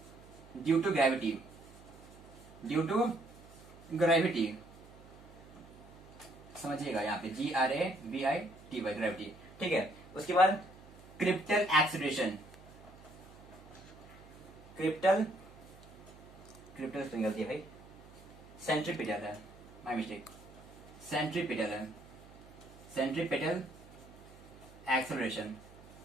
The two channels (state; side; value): noise; right; hum, 20 dB below the sound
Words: due to gravity, due to gravity, समझिएगा यहाँ पे GRAVITY, ग्रेविटी, ठीक है। उसके बाद क्रिप्टल एक्सेलरेशन, क्रिप्टल गलती है भाई, सेंट्रीपिटल है, माय मिस्टेक, सेंट्रीपिटल है, सेंट्रीपिटल एक्सेलरेशन,